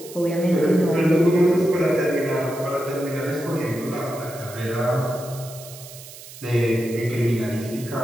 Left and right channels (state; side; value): noise; right; hiss, 16 dB below the sound